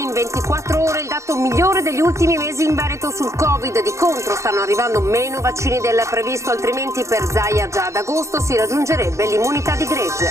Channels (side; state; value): left; late; 0.14 ms